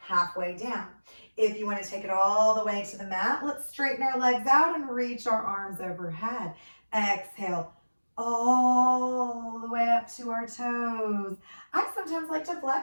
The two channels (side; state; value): both; inverted; correlation -1.00